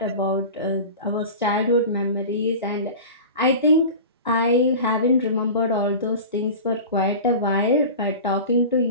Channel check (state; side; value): inverted; both; correlation -0.33